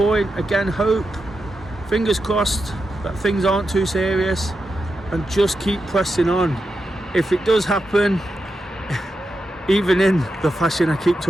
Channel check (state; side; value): normal; both; correlation 0.88